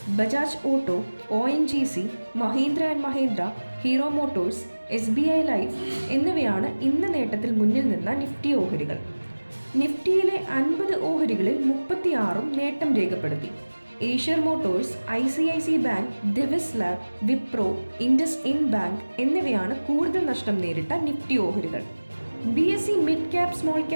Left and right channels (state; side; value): inverted; both; correlation -1.00